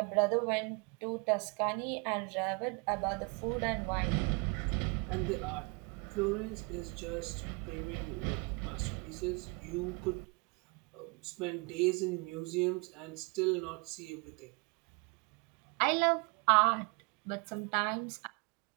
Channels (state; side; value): quieter; left; 31.0 dB